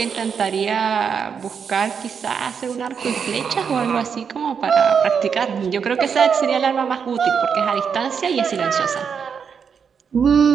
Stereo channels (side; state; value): left; quieter; 6.7 dB